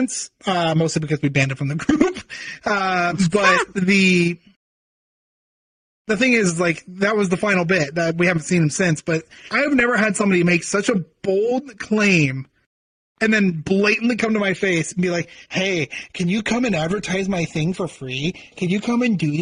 mostly because we banned him from the group. But the thing is, like, that was the final bit. That we haven't seen him since. But I've never had somebody make such a bold claim and then blatantly come to my face and be like, hey, can you come and advertise my thing for free? Can you come and do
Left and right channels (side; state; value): both; identical; correlation 1.00